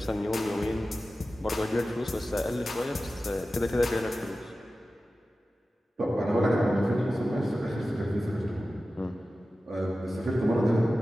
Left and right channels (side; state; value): both; normal; correlation 0.94